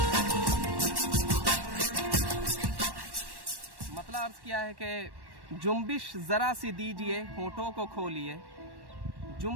मतलब अर्ज़ किया है कि जुम्बिश ज़रा सी दीजिए होठों को खोलिए,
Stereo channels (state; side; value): late; left; 1.1 ms